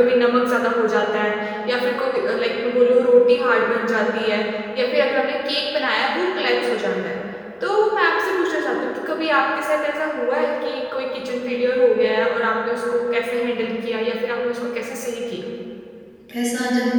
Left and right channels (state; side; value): identical; both; correlation 1.00